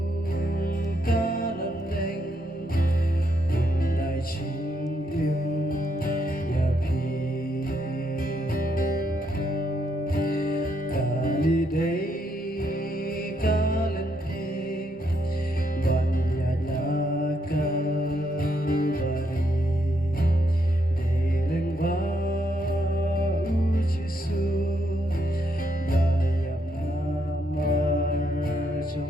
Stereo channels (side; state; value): both; normal; correlation 0.76